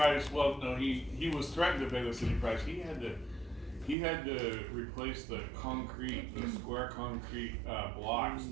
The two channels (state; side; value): drops out; left; at 4.0 s